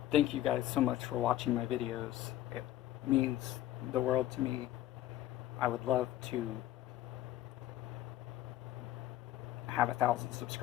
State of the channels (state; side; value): quieter; right; 13.9 dB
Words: thank you guys so much for watching my videos. It means the world to me. I would love to have 1,000